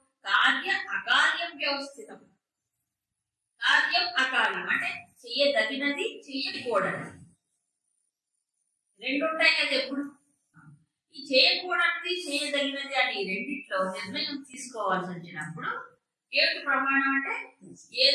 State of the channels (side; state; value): both; identical; correlation 1.00